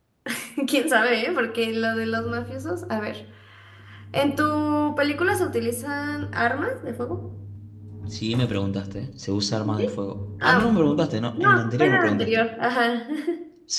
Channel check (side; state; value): both; identical; correlation 1.00